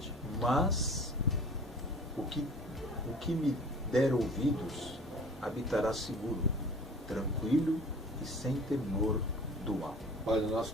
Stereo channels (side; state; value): both; normal; correlation 0.45